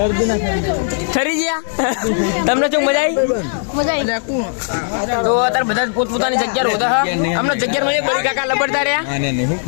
ઠરી ગયા. તમને શું મજા આવી? મજા આવી. તો અત્યારે બધા પોતપોતાની જગ્યા રોતા હા. અમને જગ્યા માં બળી કાકા લબડતા રહ્યા. આને શું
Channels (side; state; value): right; silent; digital silence